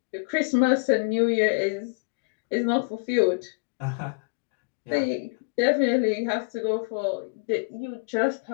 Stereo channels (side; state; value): right; quieter; 34.1 dB